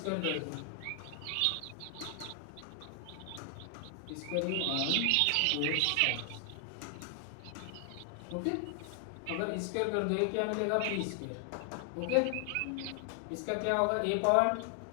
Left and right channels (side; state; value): both; different; correlation 0.00